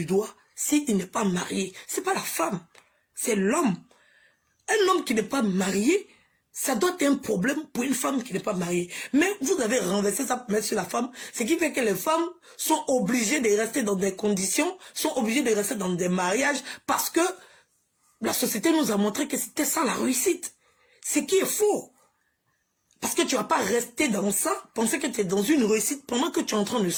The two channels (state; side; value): identical; both; correlation 1.00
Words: doigt s'il n'est pas marié. C'est pas la femme, c'est l'homme. Un homme qui n'est pas marié, ça doit être un problème pour une femme qui n'est pas mariée. Mais vous avez renversé ça pour mettre sur la femme, ce qui fait que les femmes sont obligées de rester dans des conditions, sont obligées de rester dans des mariages, parce que la société nous a montré que c'était ça la réussite. Ce qui est faux. Parce que tu ne vas pas rester dans ça, penser que tu es dans une réussite pendant que tu es en train de